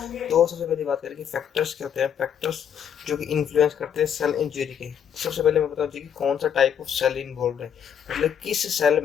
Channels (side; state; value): right; quieter; 8.5 dB